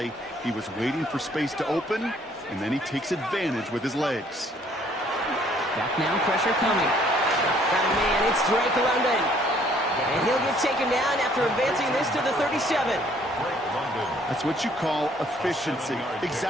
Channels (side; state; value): both; normal; correlation 0.62